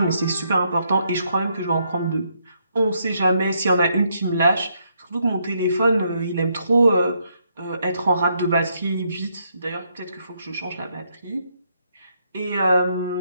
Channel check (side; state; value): both; inverted; correlation -0.75